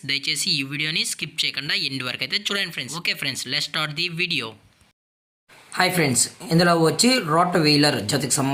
దయచేసి ఈ వీడియోని స్కిప్ చేయకుండా ఎండ్ వరకు అయితే చూడండి friends. Okay friends, let's start the video. Hi friends, ఇందులో వచ్చి రాట్ వీలర్ జతకు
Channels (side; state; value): both; identical; correlation 1.00